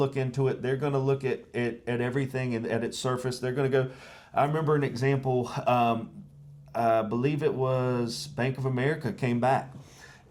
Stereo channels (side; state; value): both; identical; correlation 1.00